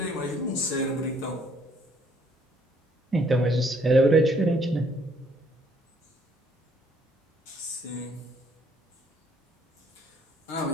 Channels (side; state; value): both; normal; correlation 0.64